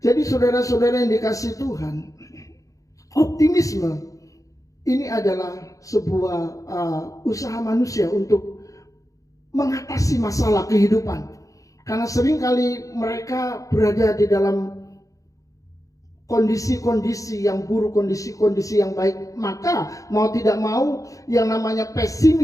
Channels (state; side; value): late; right; 0.16 ms